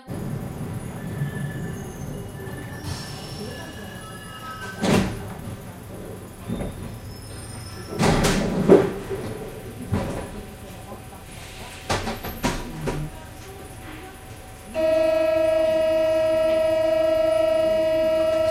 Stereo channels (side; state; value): both; identical; correlation 1.00